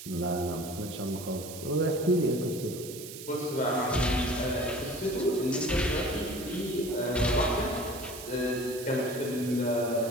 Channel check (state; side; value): noise; right; hiss, 12 dB below the sound